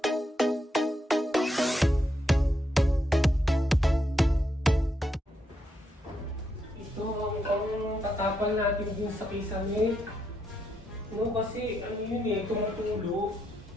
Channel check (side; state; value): both; normal; correlation 0.80